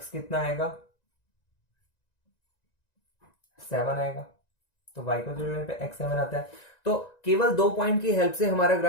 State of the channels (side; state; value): right; late; 1.9 ms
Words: कितना आएगा, 7 आएगा, तो y को 0 लेने पे x 7 आता है। तो केवल 2 पॉइंट की हेल्प से हमारा